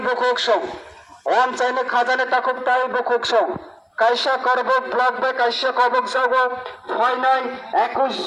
বুকুক সং ওয়ান চাইলে খাজানে তাকুক তাই বুকুক সং কাইসা করবুক ব্লক বে কাইসা কবক যাগো ফয়নাই 21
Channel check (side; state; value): both; identical; correlation 1.00